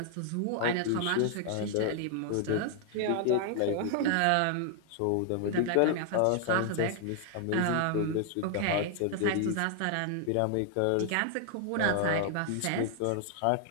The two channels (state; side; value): different; both; correlation 0.00